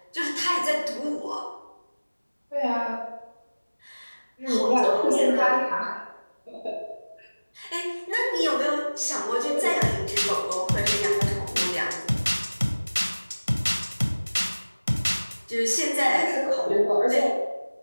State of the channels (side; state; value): both; inverted; correlation -1.00